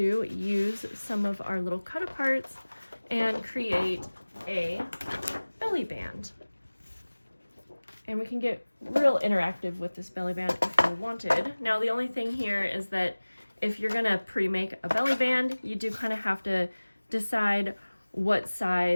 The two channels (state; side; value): inverted; both; correlation -1.00